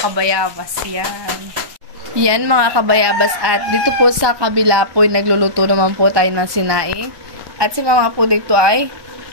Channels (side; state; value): left; late; 1.2 ms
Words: kabayabas. Yan. Yan mga kabayabas. At dito po sa kabila po ay nagluluto naman po tayo ng sinaing. At si mama po dito ay